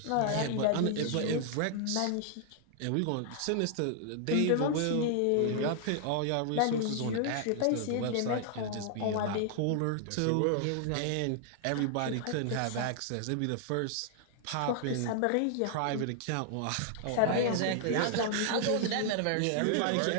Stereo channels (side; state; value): both; different; correlation 0.00